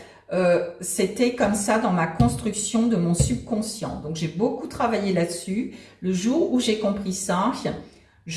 c'était comme ça dans ma construction de mon subconscient. Donc, j'ai beaucoup travaillé là-dessus. Le jour où j'ai compris ça,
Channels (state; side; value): identical; both; correlation 1.00